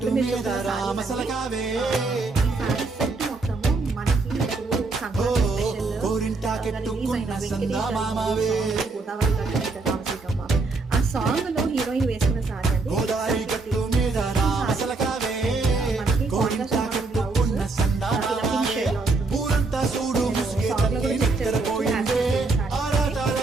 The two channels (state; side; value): quieter; left; 3.7 dB